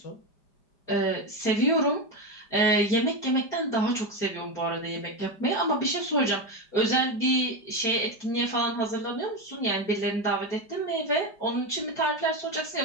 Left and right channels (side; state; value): right; late; 5.0 ms